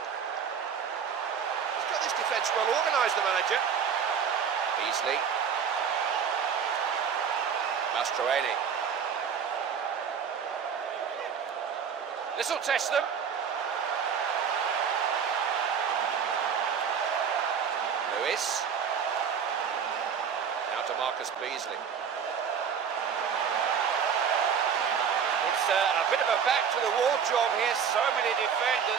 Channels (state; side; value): quieter; left; 7.2 dB